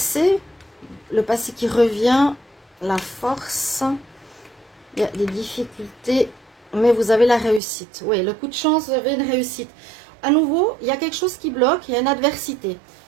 Le passé qui revient. La force. Il y a des difficultés. Mais vous avez la réussite. Oui, le coup de chance, vous avez une réussite. À nouveau, il y a quelque chose qui bloque, il y a une adversité.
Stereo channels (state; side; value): drops out; left; at 7.6 s